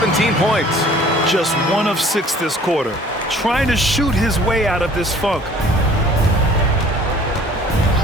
points. Just 1 of 6 this quarter. Trying to shoot his way out of this funk.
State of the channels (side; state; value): both; normal; correlation 0.52